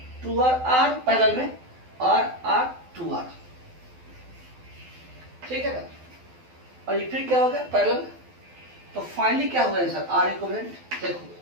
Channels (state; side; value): late; left; 12 ms